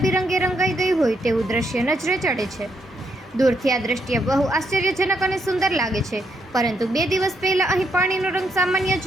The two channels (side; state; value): both; normal; correlation 0.77